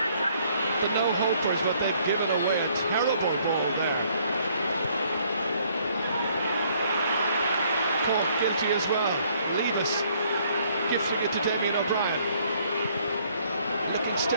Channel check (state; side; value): inverted; both; correlation -0.65